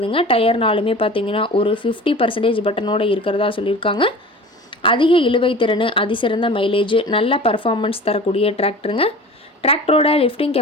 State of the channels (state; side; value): normal; both; correlation 0.39